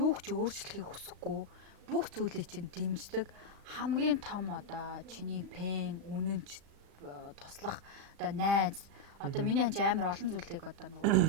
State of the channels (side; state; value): left; late; 35 ms